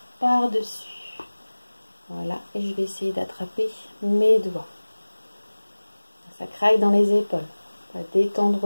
par-dessus. Voilà, et je vais essayer d'attraper mes doigts. Ça craque dans les épaules. On va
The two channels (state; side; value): inverted; both; correlation -1.00